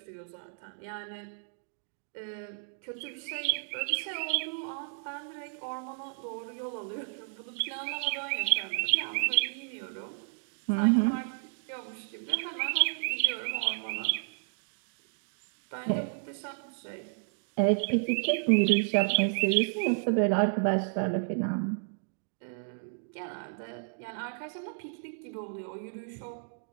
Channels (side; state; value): left; silent; digital silence